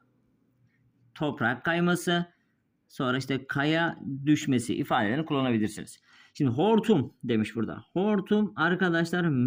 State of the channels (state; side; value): identical; both; correlation 1.00